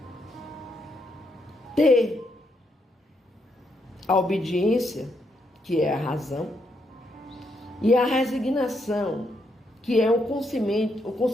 ter a obediência, que é a razão, e a resignação, que é o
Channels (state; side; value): normal; both; correlation 0.78